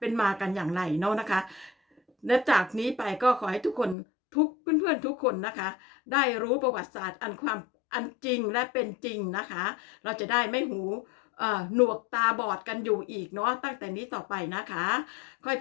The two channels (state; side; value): drops out; right; at 4.0 s